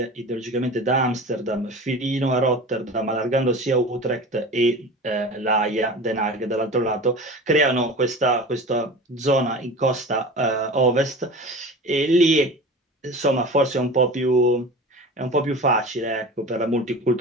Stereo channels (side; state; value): both; normal; correlation 0.35